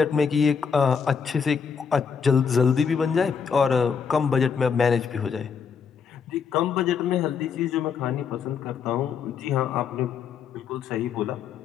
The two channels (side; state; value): right; quieter; 6.3 dB